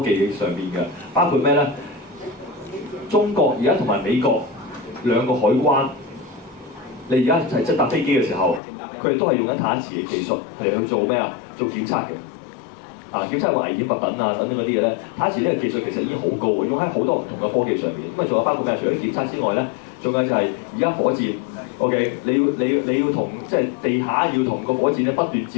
技上面嘅，包括咩咧？中國而家同埋美國兩個海關，你而家係即係搭飛機嘅時候，佢哋都係用緊太一磁嘅技術係去做咩啊？做檢測嘅。檢測個危險物品等等嗰啲嘢咧，太一磁呢個技術其實已經好高嘅，用喺好多唔同嘅科技上面。咁仲有包括咩？除咗檢測之外咧，仲有就係而家火箭 ，OK， 你要同即係地下要同個火箭咧不斷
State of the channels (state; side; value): drops out; right; at 8.6 s